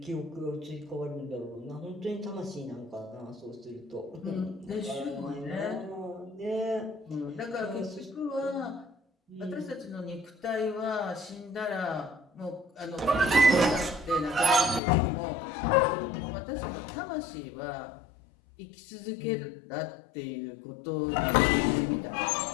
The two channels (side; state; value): right; drops out; at 14.8 s